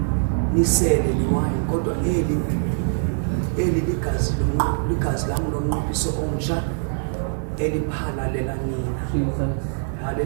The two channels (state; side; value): silent; left; 59 dB below the other